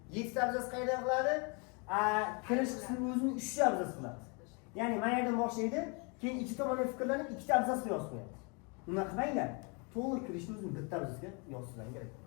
7 ta abzas qayerda qiladi? Kirish qismi o'zini 3 ta abzas qiladi. Ya'ni mana yerdan boshlaydi, keyin ikki tomondan fikrlanib 2 ta abzasga yozib qo'yadi. Unaqa qilmanglar. To'liq kirishni o'zini bitta abzasga yozishlar kerak.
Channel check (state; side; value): quieter; right; 33.1 dB